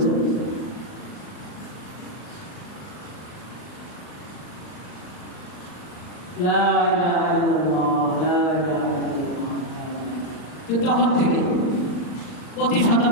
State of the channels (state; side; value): late; right; 39 ms